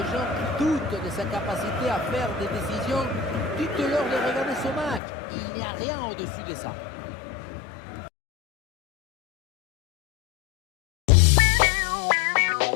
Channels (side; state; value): right; drops out; at 5.0 s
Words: gens qui doutent de sa capacité à faire des décisions, dites-leur de regarder ce match. Il n'y a rien au-dessus de ça.